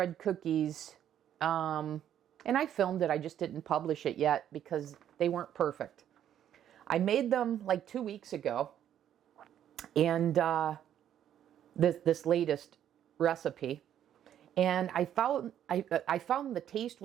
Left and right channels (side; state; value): left; quieter; 10.4 dB